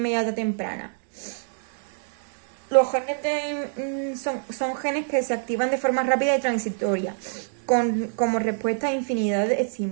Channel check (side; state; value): left; silent; digital silence